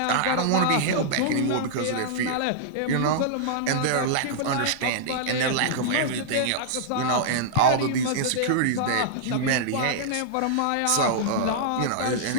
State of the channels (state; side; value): different; both; correlation -0.02